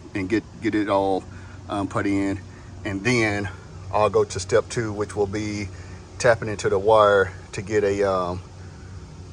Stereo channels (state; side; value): identical; both; correlation 1.00